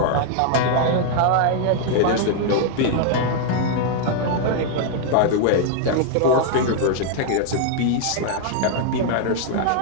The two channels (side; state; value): both; different; correlation -0.01